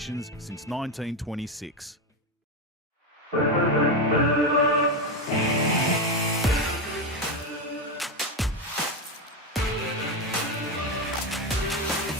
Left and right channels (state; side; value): normal; both; correlation 0.12